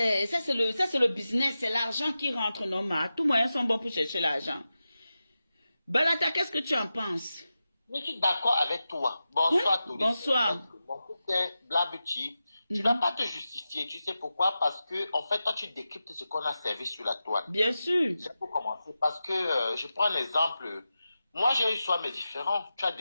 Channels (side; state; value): both; inverted; correlation -0.92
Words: le business, c'est l'argent qui rentre normal. Tous moyens sont bons pour chercher l'argent. Balata, qu'est-ce que tu en penses? Je suis d'accord avec toi. Bonsoir, oui? Bonsoir. Mon fils est Black Beauty. Tu ne vas pas te justifier. Tu sais pourquoi? Parce que, en fait, toi, tu décryptes ce qu'on a servi sur la toile. Bien sûr. C'est pour commencer. Parce que, je prends un exemple. Moi, j'ai eu soit mes différents. Tu as